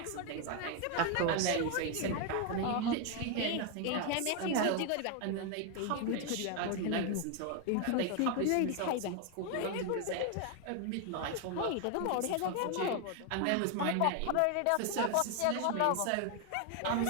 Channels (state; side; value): different; both; correlation 0.01